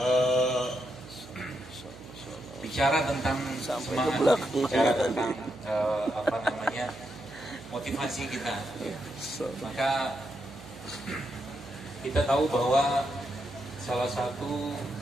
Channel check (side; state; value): right; noise; hum, 17 dB below the sound